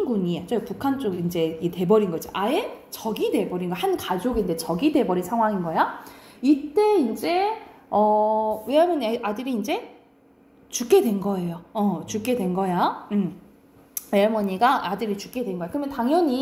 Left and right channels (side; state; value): both; identical; correlation 1.00